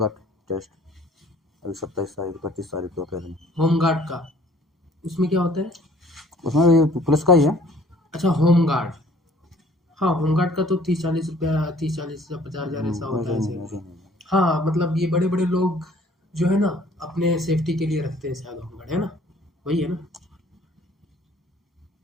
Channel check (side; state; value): both; normal; correlation 0.56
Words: का टेस्ट, अभी 27 तारीख 25 तारीख को कह रहे हैं। होमगार्ड का? उसमें क्या होता है? उसमें भी पुलिस का ही है। अच्छा, होमगार्ड। हाँ, होमगार्ड का तो 30-40 रुपया, 30-40 या 50,000 ऐसा होता है वैसे शायद। नहीं, वैसे नहीं। हाँ, मतलब ये बड़े बड़े लोग जो है ना अपने सेफ्टी के लिए रखते हैं शायद होमगार्ड, है ना? वही है ना?